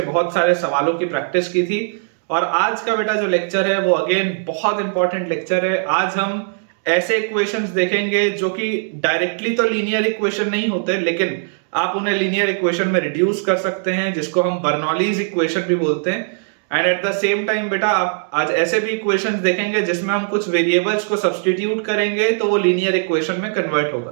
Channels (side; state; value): left; silent; digital silence